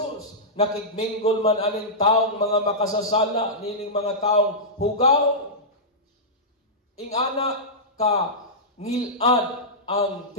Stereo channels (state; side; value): normal; both; correlation -0.13